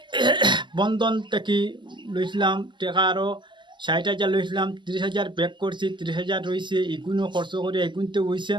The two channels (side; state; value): left; late; 0.23 ms